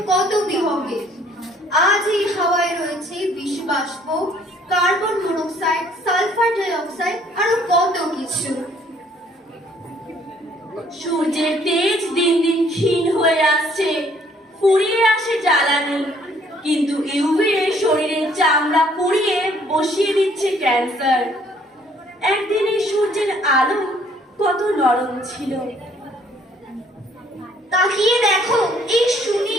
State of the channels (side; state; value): both; normal; correlation 0.62